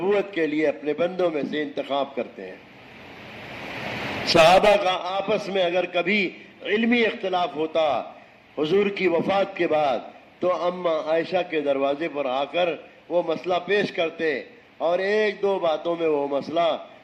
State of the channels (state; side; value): identical; both; correlation 1.00